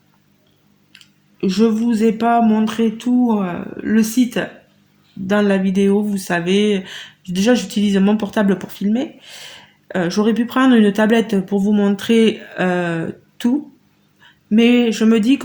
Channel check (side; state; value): both; identical; correlation 1.00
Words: je vous ai pas montré tout le site dans la vidéo, vous savez. Déjà, j'utilise mon portable pour filmer. J'aurais pu prendre une tablette pour vous montrer tout, mais je me dis